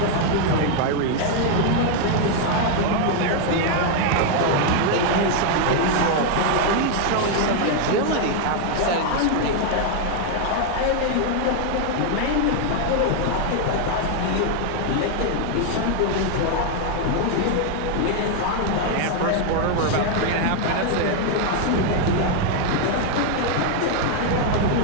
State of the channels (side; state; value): both; different; correlation 0.00